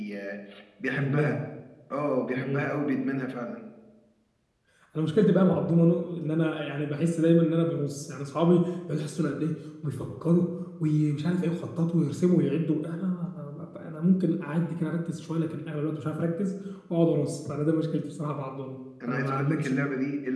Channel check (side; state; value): both; identical; correlation 1.00